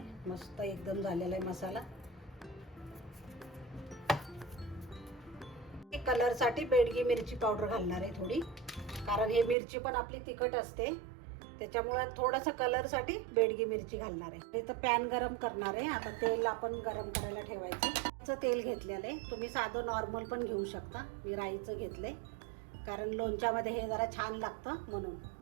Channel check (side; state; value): left; drops out; at 9.6 s